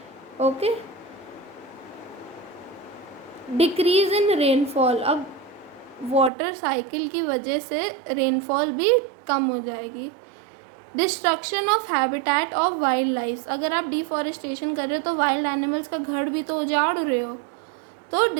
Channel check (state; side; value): drops out; left; at 6.3 s